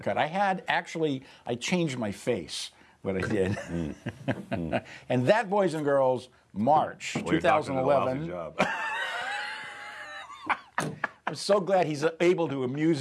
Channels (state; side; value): identical; both; correlation 1.00